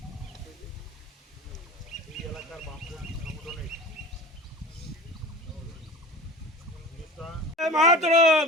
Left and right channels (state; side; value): normal; both; correlation 0.36